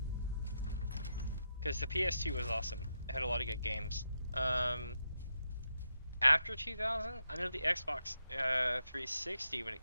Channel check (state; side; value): inverted; both; correlation -0.83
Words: Because the PS2 was awesome. It had a lot of good games. After 2000, I know the Xbox 360 when it